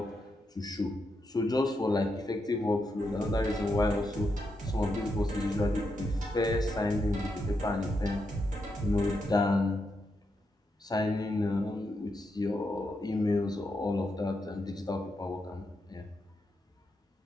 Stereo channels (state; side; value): normal; both; correlation 0.83